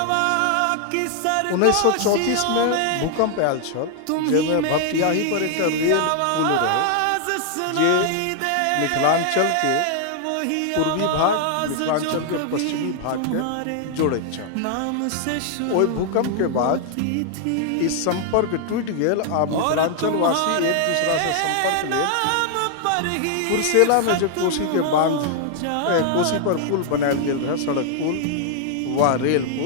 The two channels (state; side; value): different; both; correlation 0.00